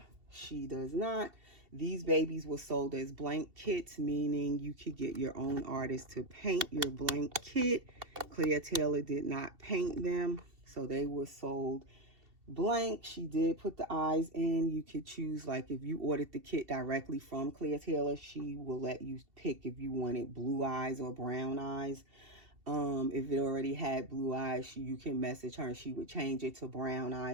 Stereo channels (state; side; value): late; left; 2.7 ms